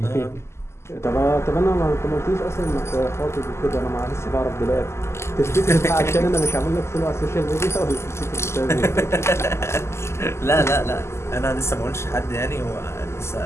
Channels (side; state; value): right; late; 0.13 ms